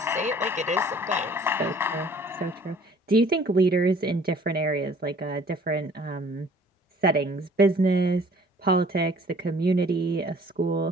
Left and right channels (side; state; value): both; normal; correlation 0.54